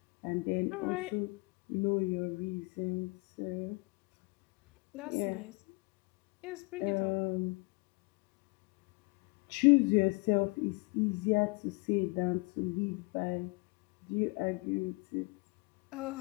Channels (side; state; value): right; quieter; 29.1 dB